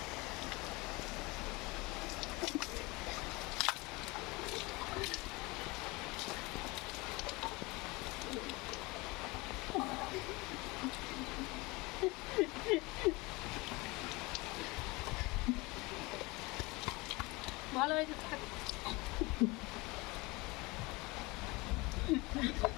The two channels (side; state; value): right; quieter; 24.1 dB